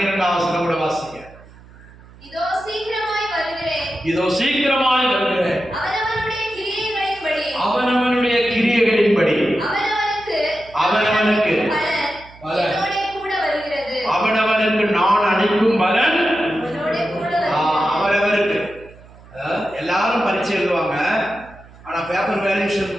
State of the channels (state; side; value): noise; right; hum, 22 dB below the sound